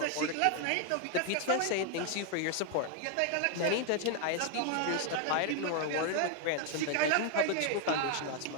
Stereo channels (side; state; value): both; different; correlation 0.01